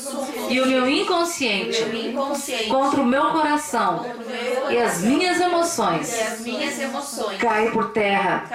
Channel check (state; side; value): identical; both; correlation 1.00